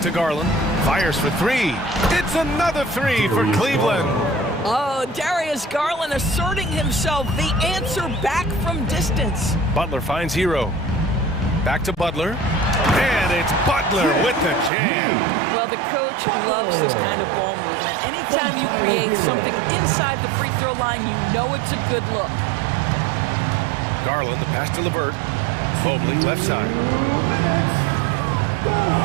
to Garland. Fires for three. It's another three for Cleveland. Oh, Darius Garland asserting himself, the answer back from distance. Butler finds Hero. Back to Butler. And it's Butler with the jam. Well, the coach loves this kind of ball movement. Anytime you create something inside the free throw line, you know it's a good look. Garland, the pass to LeVert. Mobley, left side.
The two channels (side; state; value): left; drops out; at 14.7 s